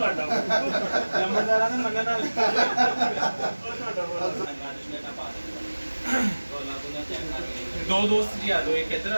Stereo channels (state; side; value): inverted; both; correlation -1.00